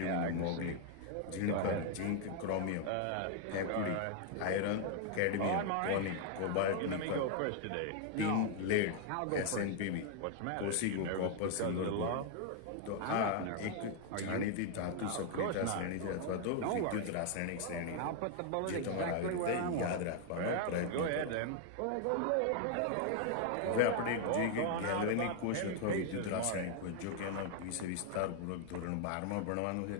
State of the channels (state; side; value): different; both; correlation 0.00